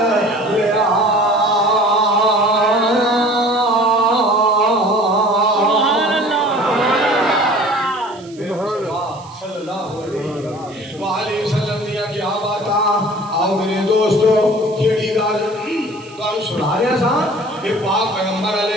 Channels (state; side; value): noise; right; hiss, 24 dB below the sound